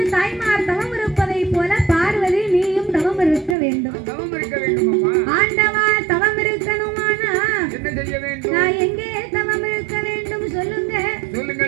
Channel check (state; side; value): drops out; left; at 3.6 s